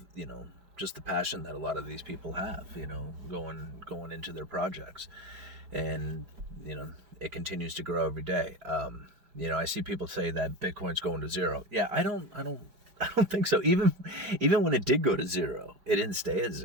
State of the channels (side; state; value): left; late; 4.9 ms